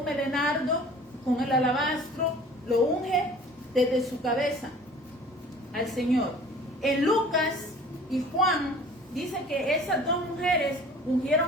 de nardo, con el alabastro, lo unge desde su cabeza al Señor. En Lucas y Juan dice que esas dos mujeres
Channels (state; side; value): normal; both; correlation 0.47